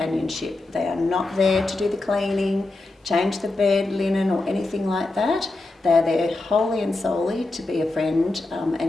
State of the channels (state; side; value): quieter; right; 3.0 dB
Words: They are not there to do the cleaning, change the bed, linen or anything like that. They're there wholly and solely to be a friend